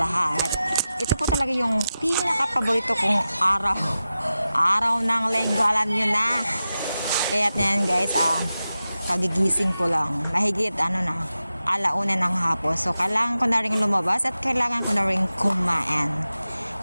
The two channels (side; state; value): both; inverted; correlation -0.93